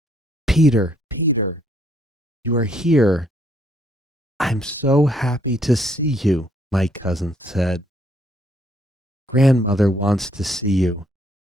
Peter, Peter, you are here. I'm so happy to see you, my cousin said. Grandmother wants to see you.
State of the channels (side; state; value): both; normal; correlation 0.68